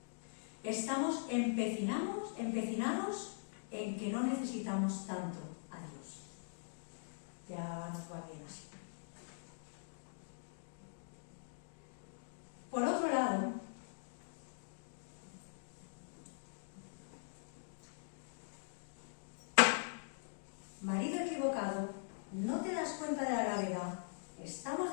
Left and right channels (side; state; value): right; silent; digital silence